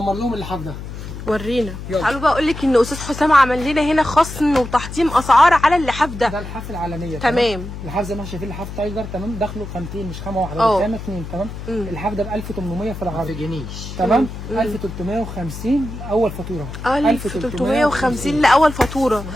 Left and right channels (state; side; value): noise; left; hum, 10 dB below the sound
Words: لهم اللحاف ده. ورينا. تعالوا بقى اقول لك ان استاذ حسام عمل لنا هنا خصم وتحطيم اسعار على اللحاف ده. ده اللحاف العالميه. تمام. اللحاف زي ما احنا شايفين لحاف تايجر تمام، داخله خامتين مش خامه واحده، ده خامه اثنين تمام. اللحاف ده ب 1800 في العرض. ما تجنيش تمام. 1350 اول فاتوره. 1350 لاول فاتوره.